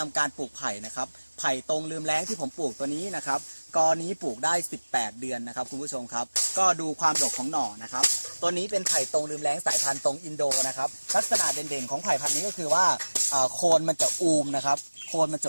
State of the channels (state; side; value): inverted; both; correlation -1.00